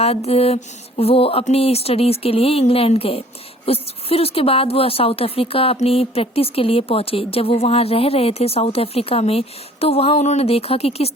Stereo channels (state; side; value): normal; both; correlation 0.53